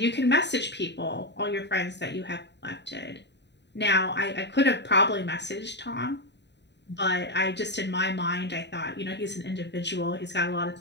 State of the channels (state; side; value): late; right; 0.50 ms